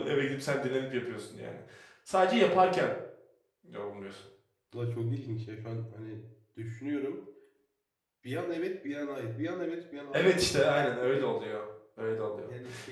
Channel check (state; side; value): identical; both; correlation 1.00